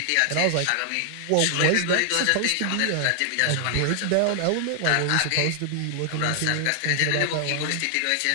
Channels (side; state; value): both; different; correlation 0.00